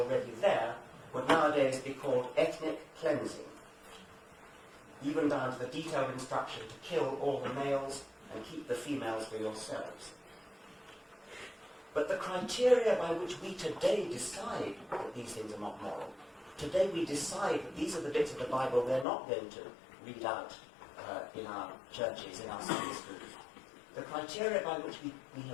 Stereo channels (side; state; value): right; drops out; at 19.1 s